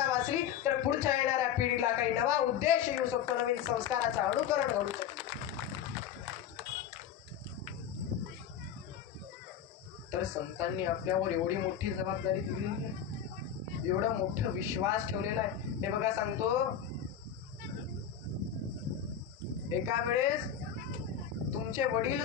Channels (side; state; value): right; quieter; 8.9 dB